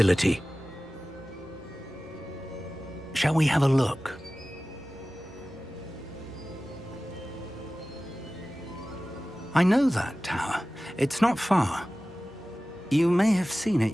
Shall we have a look? I know that tower. It's not far. You may have seen it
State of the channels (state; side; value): normal; both; correlation 0.96